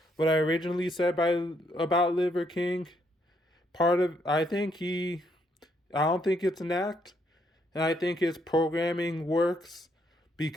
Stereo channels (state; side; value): normal; both; correlation 0.73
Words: what I originally said about Liver King, part of I don't think it's an act, and I think his programming works